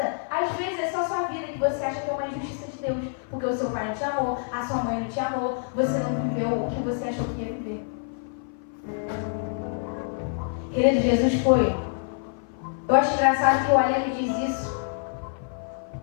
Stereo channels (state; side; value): silent; right; 56 dB below the other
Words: Às vezes é só sua vida que você acha que é uma injustiça de Deus. Porque o seu pai não te amou, a sua mãe não te amou, você não viveu o que você achou que ia viver. Querido, Jesus foi. Eu acho engraçado que o Aleno diz isso.